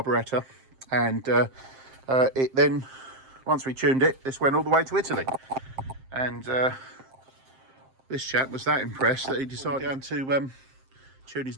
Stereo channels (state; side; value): late; left; 7.6 ms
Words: and it then, once we tuned it, this went all the way to Italy. And this chap was that impressed that he decided down to tune